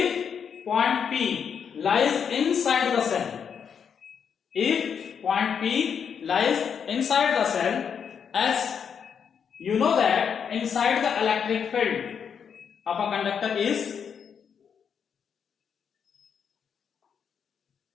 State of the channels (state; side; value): quieter; right; 7.2 dB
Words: point P lies inside the cell, if point P lies inside the cell, as you know that inside the electric field of a conductor is